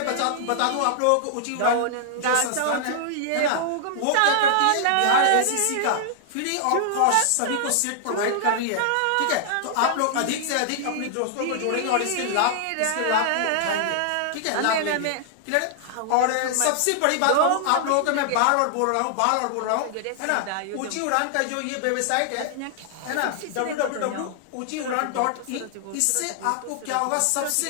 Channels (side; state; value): both; different; correlation -0.01